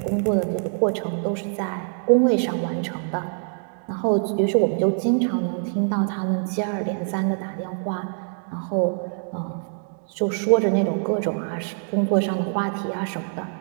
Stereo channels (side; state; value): left; silent; 62 dB below the other